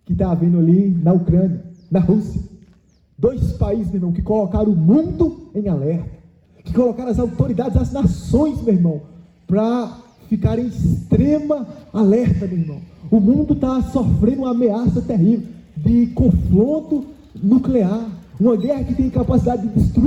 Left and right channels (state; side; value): identical; both; correlation 1.00